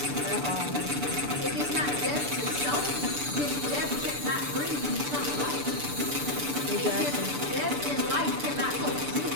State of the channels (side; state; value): left; late; 6.9 ms